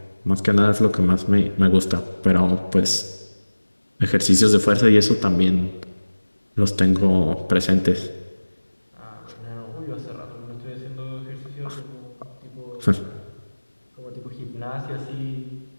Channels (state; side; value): inverted; both; correlation -1.00